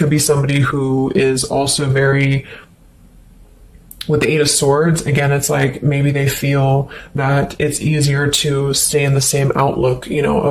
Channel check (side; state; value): both; identical; correlation 1.00